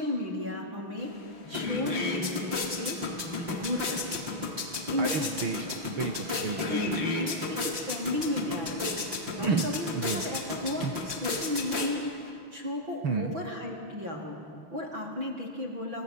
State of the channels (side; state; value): left; late; 5.8 ms